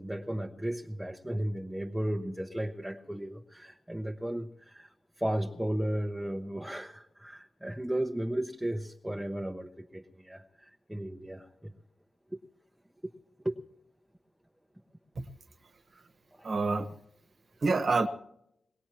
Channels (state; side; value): normal; both; correlation 0.97